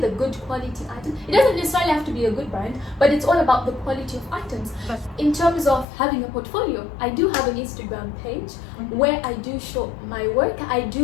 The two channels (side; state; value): right; drops out; at 5.9 s